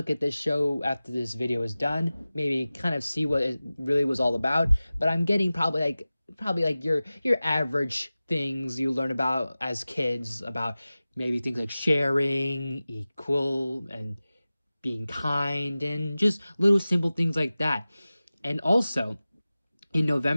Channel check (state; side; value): inverted; both; correlation -0.97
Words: at this show after this video is done, maybe kind of see what it really was all about. But I'm getting probably like your average things you learn about as kids, about maybe things like sharing, equal, and being kind, and just little simple things like that. And also, in